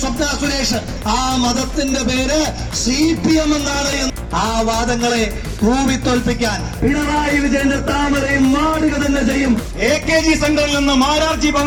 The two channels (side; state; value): both; identical; correlation 1.00